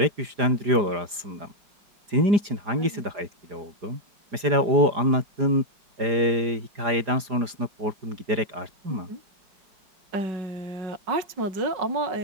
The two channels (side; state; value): left; late; 4.9 ms